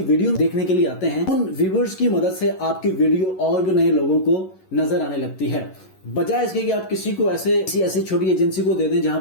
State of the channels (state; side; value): late; right; 11 ms